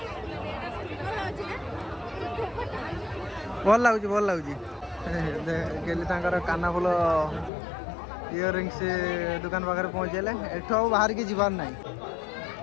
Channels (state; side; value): drops out; right; at 7.5 s